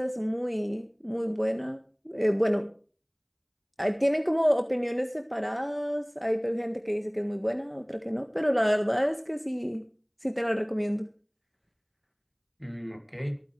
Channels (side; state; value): both; identical; correlation 1.00